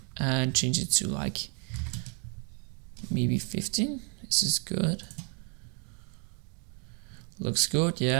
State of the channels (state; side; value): quieter; left; 38.4 dB